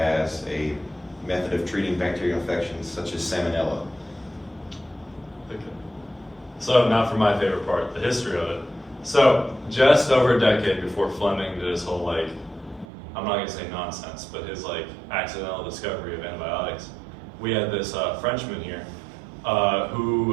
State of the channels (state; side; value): drops out; left; at 12.9 s